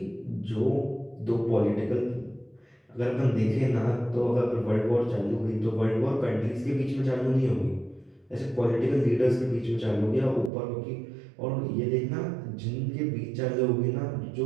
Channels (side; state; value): left; drops out; at 10.5 s